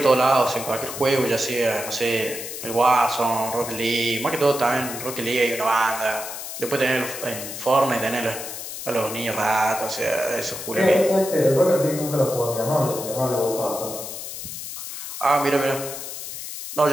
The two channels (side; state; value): left; noise; hiss, 8 dB below the sound